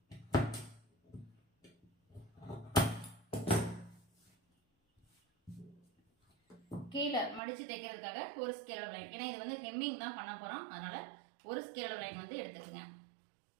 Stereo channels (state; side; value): drops out; left; at 7.4 s